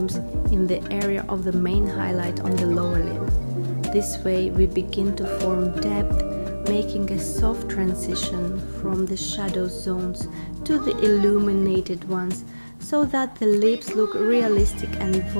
in the area of the main highlight on the lower lip. This way we begin to form depth, making a soft transition from the shadow zones to the illuminated ones, so that the lips look realistic and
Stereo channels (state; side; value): inverted; both; correlation -1.00